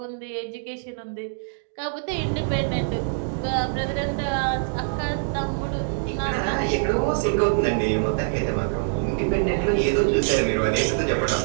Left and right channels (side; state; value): left; silent; digital silence